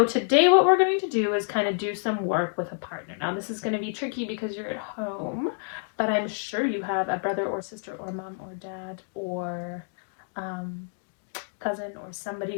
today what we're going to do is kind of do some work with a partner. Now this is going to be tricky because you're at home, but I'm sure you have a brother or sister or mom or dad or cousin or somebody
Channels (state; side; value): silent; right; digital silence